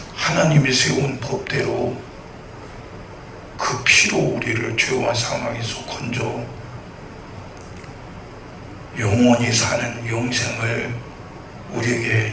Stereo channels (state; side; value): identical; both; correlation 1.00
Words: 하나님이 세운 법대로 그 피로 우리를 죄와 사망에서 건져 영원히 사는 영생을